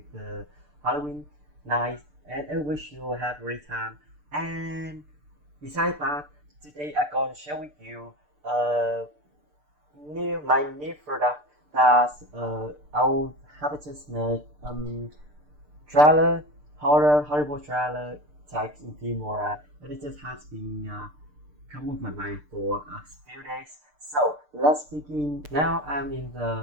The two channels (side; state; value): left; late; 6.7 ms